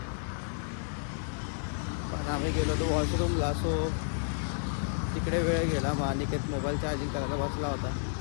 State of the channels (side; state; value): right; silent; digital silence